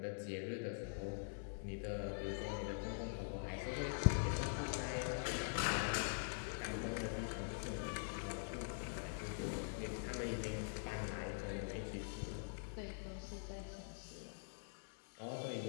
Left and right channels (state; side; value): silent; right; digital silence